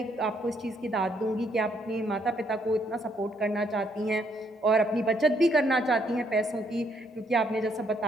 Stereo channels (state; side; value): normal; both; correlation 0.71